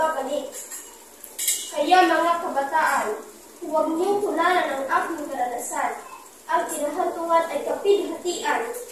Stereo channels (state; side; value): identical; both; correlation 1.00